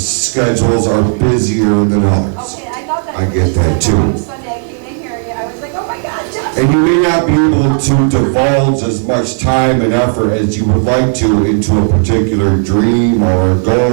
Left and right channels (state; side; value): silent; left; 69 dB below the other